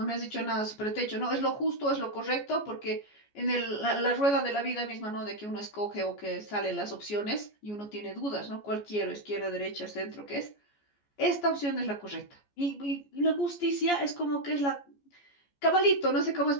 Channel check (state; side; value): late; right; 14 ms